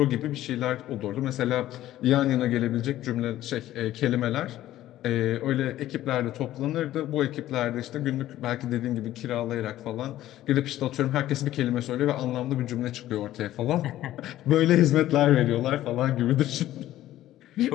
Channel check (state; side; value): quieter; right; 13.9 dB